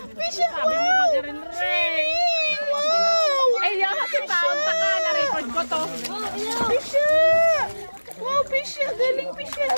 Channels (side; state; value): both; inverted; correlation -1.00